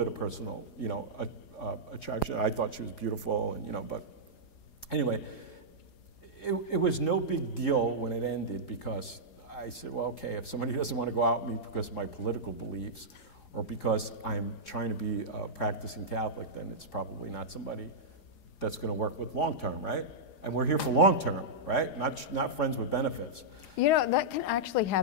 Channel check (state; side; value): late; right; 4.8 ms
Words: of personal, attraction. I thought she was beautiful, and but anyway, it was no big deal when it ended, because I said, well, okay, if somebody doesn't want to go out with me because of my political beliefs or because I'm trying to be a practicing Catholic, then it's probably not somebody that's going to work with long term, right? And we're here for long term, right? Not friends with benefits. That can actually